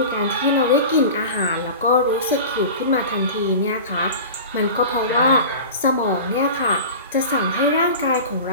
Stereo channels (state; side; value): inverted; both; correlation -0.33